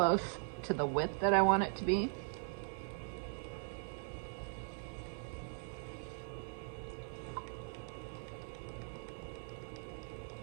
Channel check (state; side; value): silent; left; digital silence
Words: to the width that I want it to be.